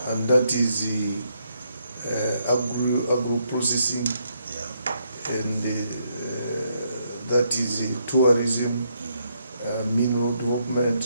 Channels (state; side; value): inverted; both; correlation -0.76